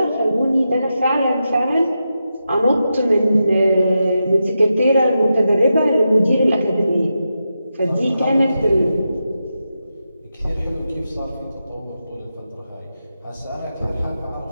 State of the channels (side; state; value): both; inverted; correlation -0.88